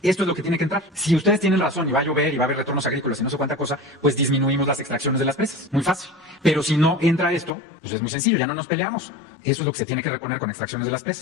esto es lo que tiene que entrar. Si ustedes tienen razón y va a llover y va a haber retornos agrícolas y no sé cuánta cosa, pues disminuimos las extracciones de las presas. Muy fácil. Pero si no entra esto, pues es muy sencillo, ya no nos peleamos. Eso es lo que se tiene que reponer con extracciones de las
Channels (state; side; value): drops out; right; at 7.5 s